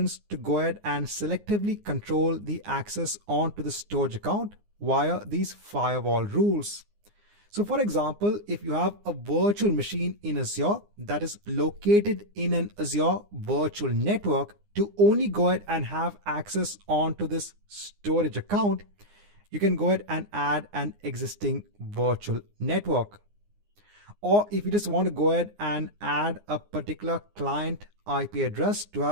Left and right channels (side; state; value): left; late; 20 ms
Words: to go ahead and selectively control the access onto the storage account via these firewall rules. So for example, if you have a virtual machine in Azure that is located in an Azure virtual network, to only go ahead and have access onto this storage account, you can go ahead and add an existing virtual network. Or if you just want to go ahead and add a particular client IP address to